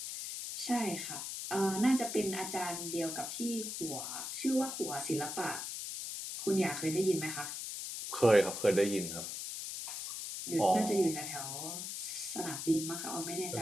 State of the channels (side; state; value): left; noise; hiss, 5 dB below the sound